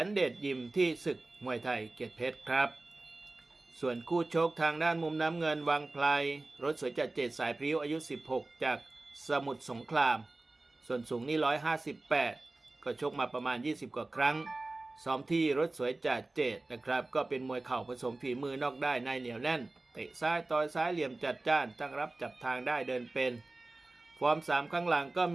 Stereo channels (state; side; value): quieter; left; 3.0 dB